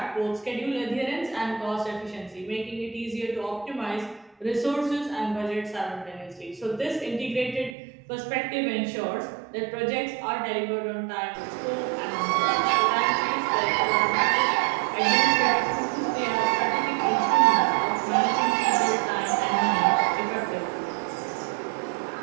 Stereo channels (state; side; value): drops out; left; at 7.8 s